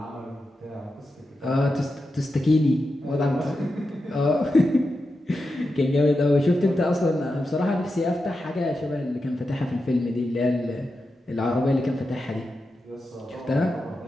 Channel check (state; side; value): normal; both; correlation 0.89